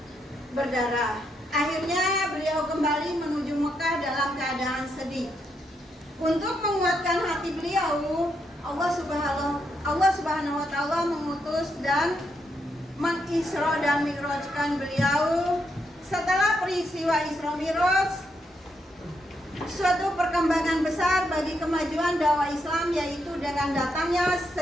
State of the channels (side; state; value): both; normal; correlation 0.80